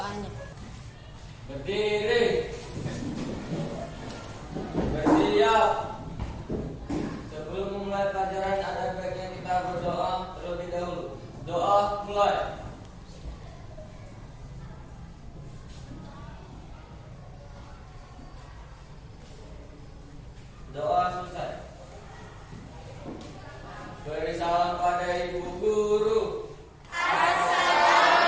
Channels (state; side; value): identical; both; correlation 1.00